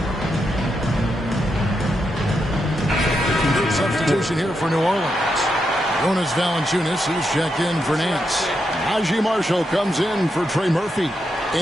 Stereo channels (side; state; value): both; normal; correlation 0.83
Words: Good substitution here for New Orleans. Jonas Valanciunas, who's checked in for Nance. Najee Marshall comes in for Trey Murphy.